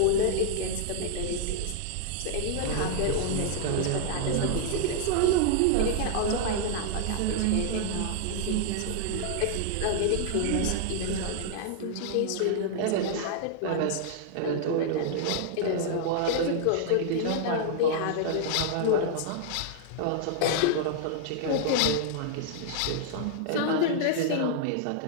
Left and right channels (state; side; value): different; both; correlation -0.01